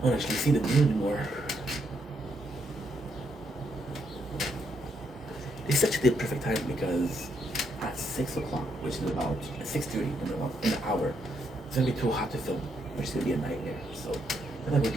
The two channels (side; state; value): both; normal; correlation 0.77